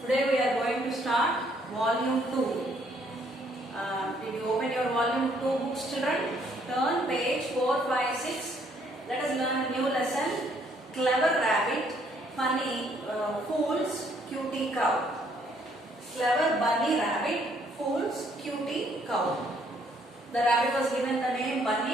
we are going to start volume 2. Did you open your volume 2 books, children? Turn page 4, 5, 6. Let us learn a new lesson. Clever rabbit, funny fools, cutie cow. Clever bunny rabbit fools cutie cow. The rabbit was given the name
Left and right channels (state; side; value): normal; both; correlation 0.67